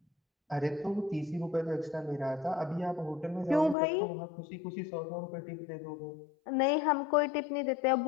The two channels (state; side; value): drops out; right; at 3.8 s